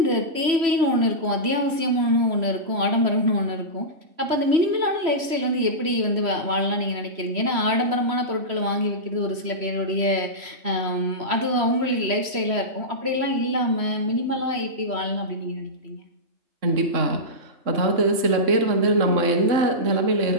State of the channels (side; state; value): left; late; 3.0 ms